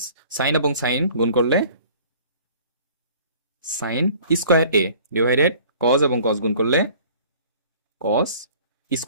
সাইন এবং সাইন গুণ করলে সাইন স্কোয়ার এ ডিভাইডেড কজ এবং কজ গুণ করলে কজ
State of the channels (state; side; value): inverted; both; correlation -0.50